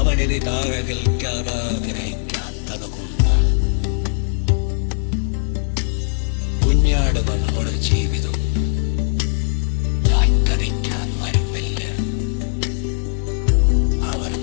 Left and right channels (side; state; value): right; silent; digital silence